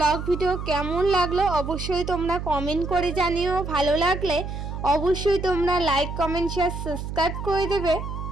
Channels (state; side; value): noise; right; hum, 6 dB below the sound